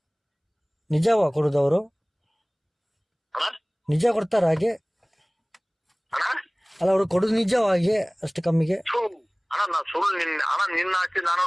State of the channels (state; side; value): identical; both; correlation 1.00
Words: ನಿಜವಾ ಕೊಡುದವರು? ನಿಜ ಕೊಡ್ತಾರ ಹಾಗೆ? ಅಲ್ಲ ಅವ್ರು ಕೊಡುದು ನಿಜವಾಗಿ ಅಷ್ಟು ಕಮ್ಮಿಗೆ? ನಾ ಸುಳ್ಳು ನಿನ್ನ ಆಸ್ತಿ ನಾನು